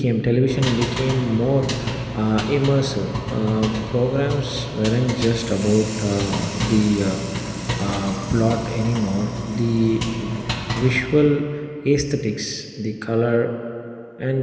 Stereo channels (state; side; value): identical; both; correlation 1.00